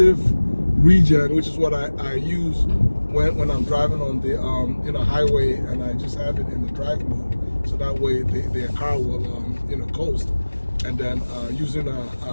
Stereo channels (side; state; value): both; inverted; correlation -1.00